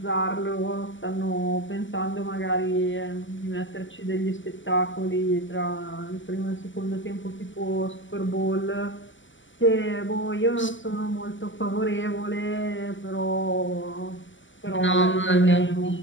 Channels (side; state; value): right; late; 0.55 ms